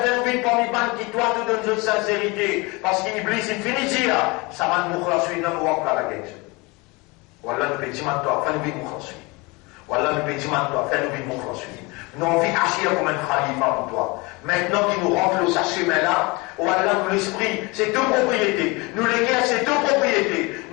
parmi ban qui toi te donne de sincérité parce qu'Iblis il finit dire ça va nous مخلصين nous va pas la guerre ولا nous pédiment toi fais nous bien مخلصين ولا nous pédiment toi fais nous bien مخلصين nous on vit agir comme un khalifa pour toi. Maintenant qu'il nous rentre le chemin-là, oh Allah, nous l'esprit, c'est deux propriétés. Nous les guerres, c'est deux propriétés.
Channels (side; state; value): right; quieter; 25.8 dB